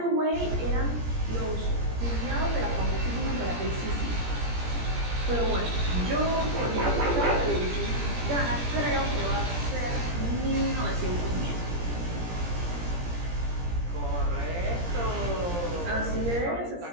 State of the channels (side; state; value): left; late; 17 ms